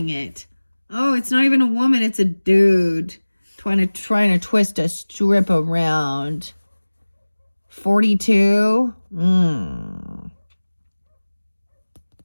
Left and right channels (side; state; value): both; inverted; correlation -1.00